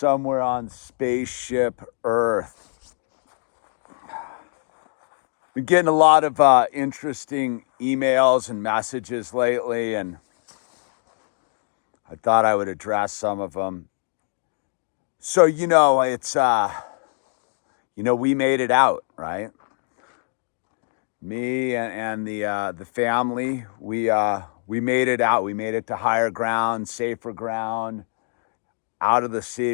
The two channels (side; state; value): right; silent; 63 dB below the other